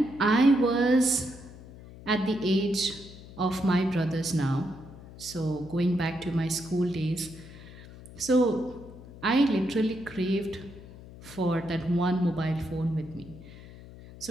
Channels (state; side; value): noise; left; hum, 17 dB below the sound